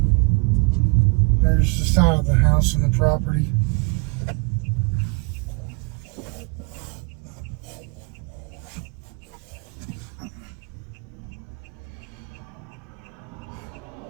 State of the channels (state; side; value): quieter; left; 31.1 dB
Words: the side of the house and the property.